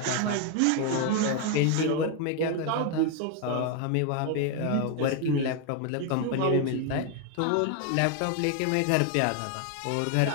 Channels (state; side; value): different; both; correlation 0.01